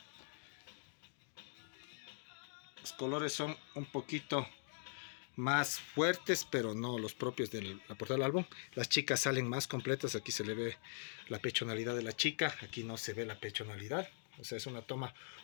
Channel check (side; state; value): right; silent; digital silence